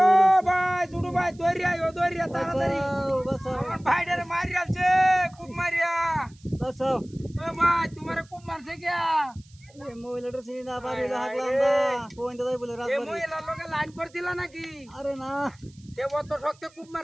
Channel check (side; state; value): right; noise; hiss, 28 dB below the sound